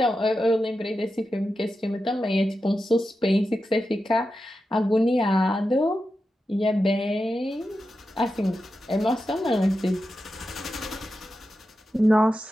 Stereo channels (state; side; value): normal; both; correlation 0.90